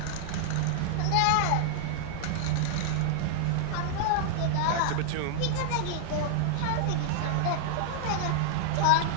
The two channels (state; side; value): different; both; correlation -0.01